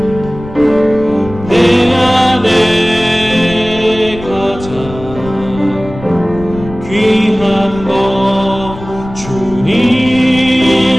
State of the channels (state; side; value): noise; left; rumble, 13 dB below the sound